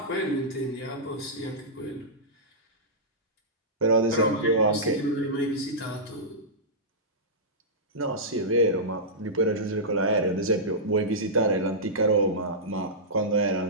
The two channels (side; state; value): both; normal; correlation -0.15